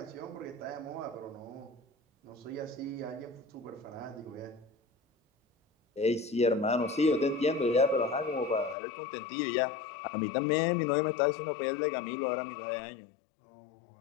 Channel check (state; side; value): drops out; right; at 8.8 s